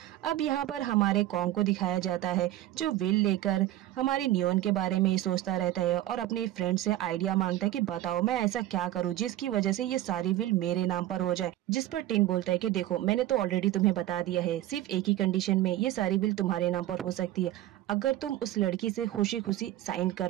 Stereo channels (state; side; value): quieter; left; 14.3 dB